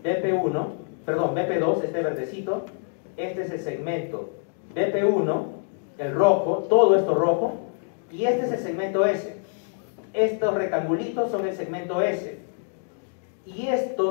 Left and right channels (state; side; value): silent; right; 61 dB below the other